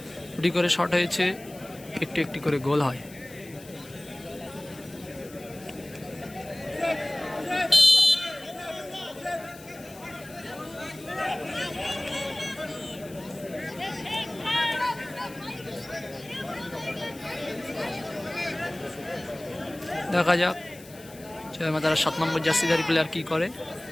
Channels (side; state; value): left; noise; hiss, 20 dB below the sound